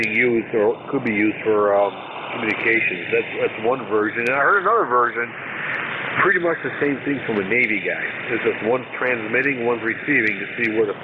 used or could be used for communications. That's one version. And I heard another version, pretty much the same thing from a Navy guy. It's just one's transmitting, one's receiving to see where the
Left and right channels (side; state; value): both; identical; correlation 1.00